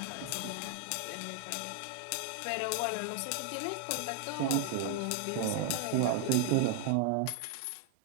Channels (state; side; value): different; both; correlation 0.00